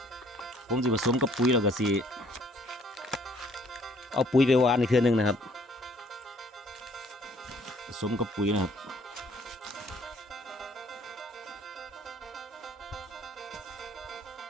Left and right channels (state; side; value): normal; both; correlation 0.61